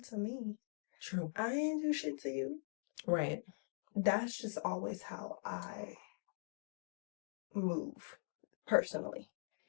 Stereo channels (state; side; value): silent; right; digital silence